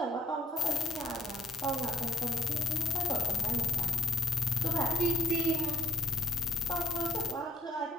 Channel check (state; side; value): normal; both; correlation 0.64